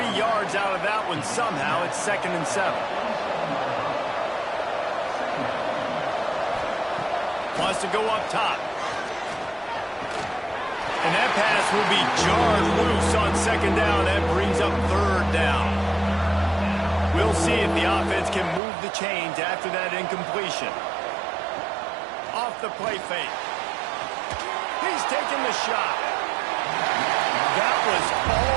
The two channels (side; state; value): left; drops out; at 18.6 s